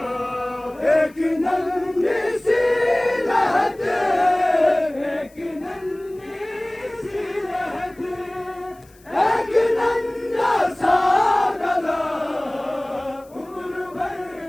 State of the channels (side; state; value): left; noise; hiss, 29 dB below the sound